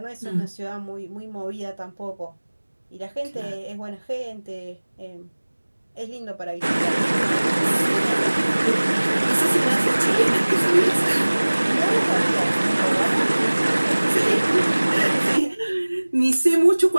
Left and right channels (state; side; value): inverted; both; correlation -1.00